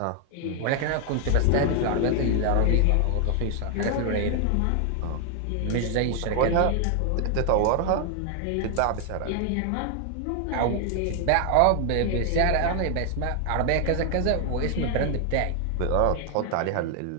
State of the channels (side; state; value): both; different; correlation 0.00